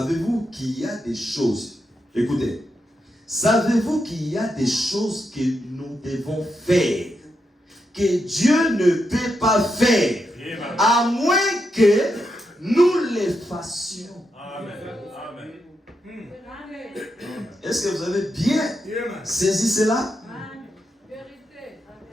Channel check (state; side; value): normal; both; correlation 0.84